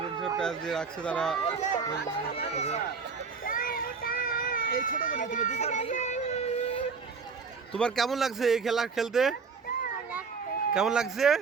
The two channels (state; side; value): quieter; left; 5.1 dB